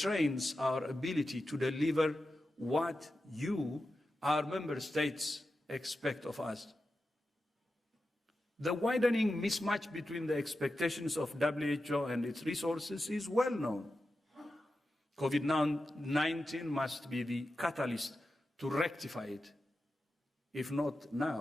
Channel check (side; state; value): both; normal; correlation 0.91